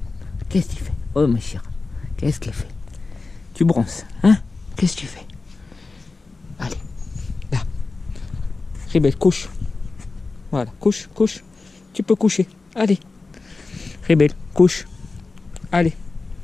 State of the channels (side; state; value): right; quieter; 3.8 dB